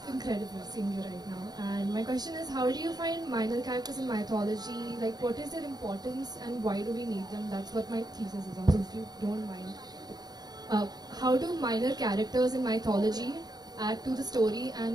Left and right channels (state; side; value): late; left; 0.19 ms